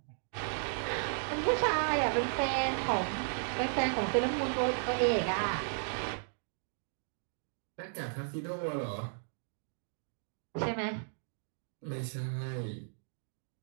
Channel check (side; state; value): left; silent; digital silence